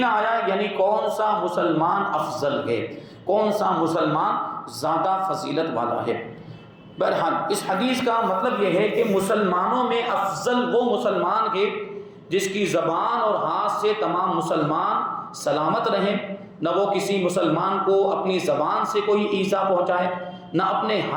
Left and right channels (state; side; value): identical; both; correlation 1.00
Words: آیا ہے، یعنی کون سا مسلمان افضل ہے، کون سا مسلمان زیادہ فضیلت والا ہے۔ بہرحال اس حدیث کا مطلب یہ ہے کہ مسلمانوں میں افضل وہ مسلمان ہے جس کی زبان اور ہاتھ سے تمام مسلمان سلامت رہیں، نہ وہ کسی مسلمان کو اپنی زبان سے کوئی ایذا پہنچائے، نہ اپنے